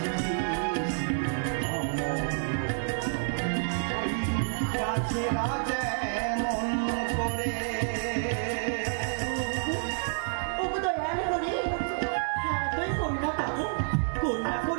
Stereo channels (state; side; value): silent; left; digital silence